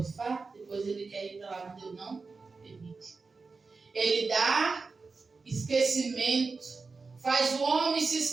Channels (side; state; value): left; quieter; 4.3 dB